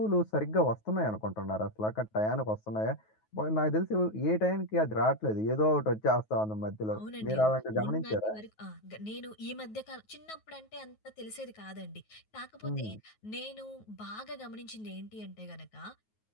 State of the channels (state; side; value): late; right; 9.3 ms